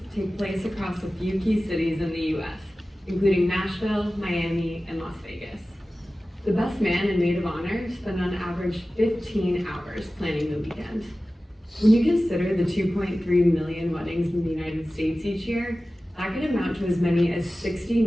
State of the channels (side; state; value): both; normal; correlation 0.96